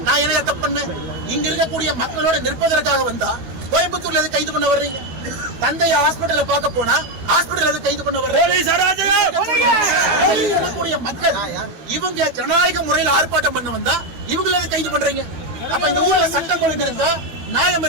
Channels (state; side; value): late; left; 12 ms